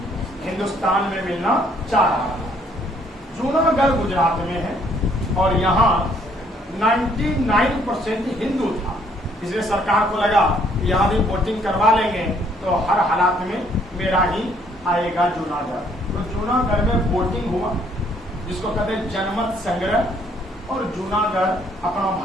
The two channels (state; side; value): normal; both; correlation 0.65